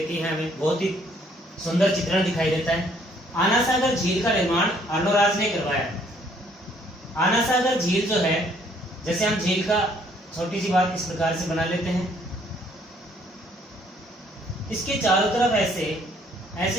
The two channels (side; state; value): both; normal; correlation 0.64